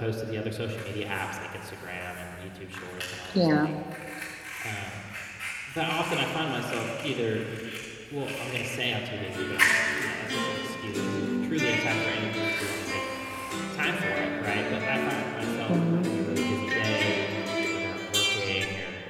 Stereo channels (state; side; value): identical; both; correlation 1.00